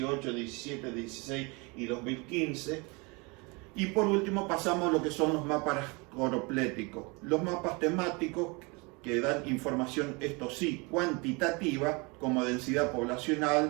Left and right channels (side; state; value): left; quieter; 28.5 dB